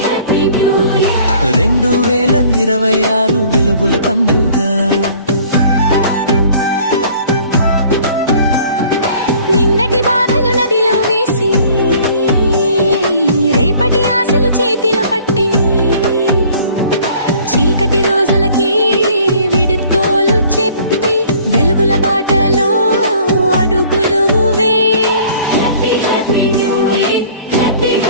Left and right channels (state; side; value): inverted; both; correlation -0.53